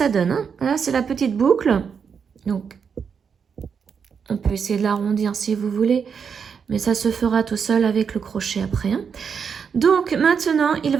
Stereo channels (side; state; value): left; quieter; 6.5 dB